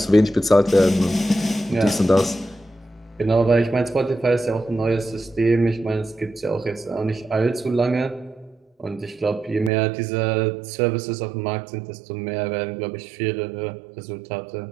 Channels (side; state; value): left; drops out; at 9.7 s